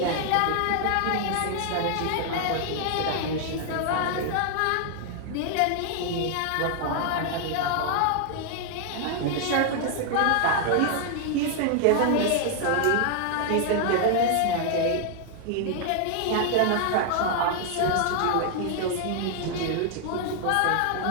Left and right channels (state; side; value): different; both; correlation 0.00